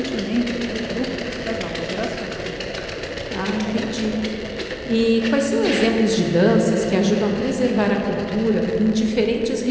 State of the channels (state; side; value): identical; both; correlation 1.00